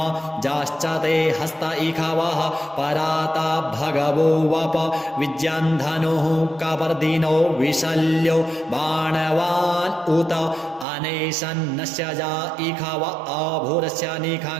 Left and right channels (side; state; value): left; drops out; at 10.9 s